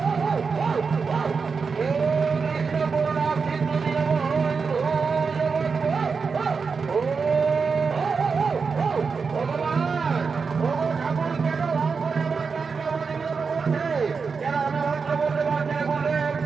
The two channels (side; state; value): left; quieter; 5.2 dB